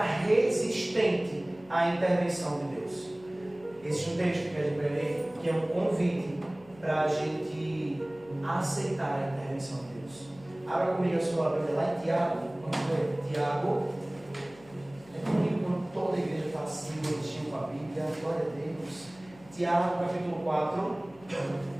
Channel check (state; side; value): noise; left; hum, 24 dB below the sound